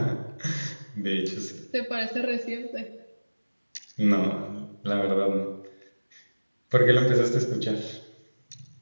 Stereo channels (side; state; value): both; inverted; correlation -1.00